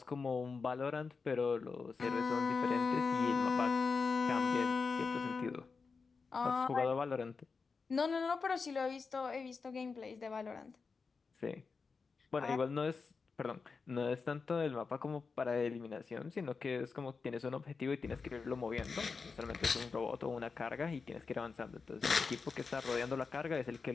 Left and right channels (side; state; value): right; quieter; 4.8 dB